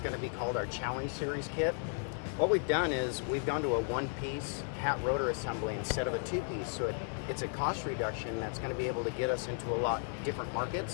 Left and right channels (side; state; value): right; silent; 55 dB below the other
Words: going to be called our Challenge Series kit. What we've done is we've gone to a one-piece hat rotor assembly instead of a two-piece, so it's a cost reduction that's going to be able to get us into a lot different